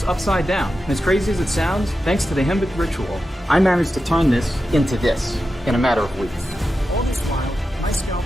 upside down. And as crazy as it sounds, thanks to the Himba ritual, I managed to turn this into this in a matter of weeks. All this while, my scalp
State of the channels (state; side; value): normal; both; correlation 0.91